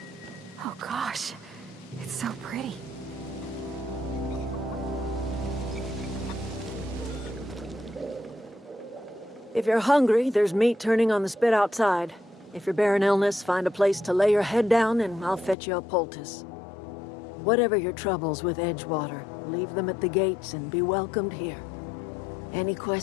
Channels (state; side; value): drops out; right; at 15.6 s